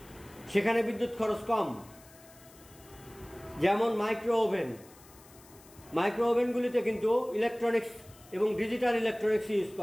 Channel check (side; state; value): left; noise; hiss, 24 dB below the sound